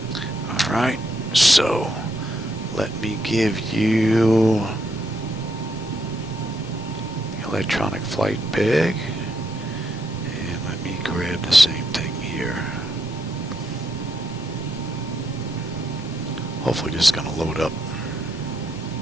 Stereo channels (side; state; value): both; normal; correlation 0.77